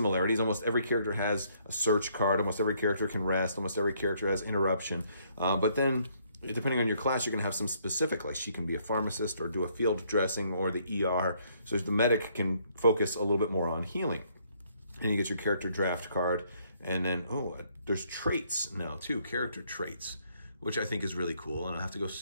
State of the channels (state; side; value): inverted; both; correlation -0.68